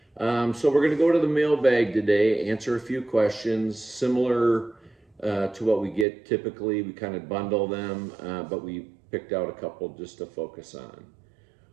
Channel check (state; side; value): drops out; left; at 6.1 s